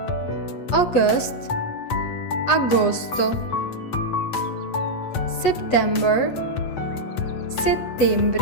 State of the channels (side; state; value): right; late; 8.2 ms